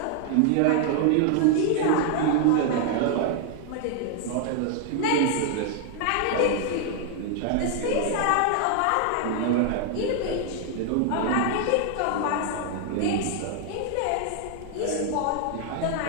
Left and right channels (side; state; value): both; different; correlation 0.00